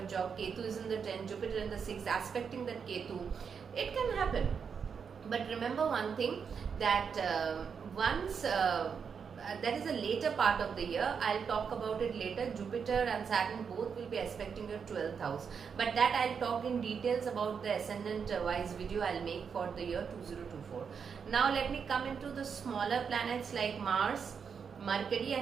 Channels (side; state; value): left; quieter; 6.4 dB